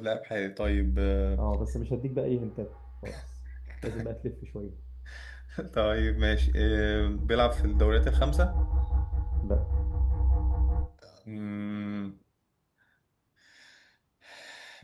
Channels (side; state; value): both; identical; correlation 1.00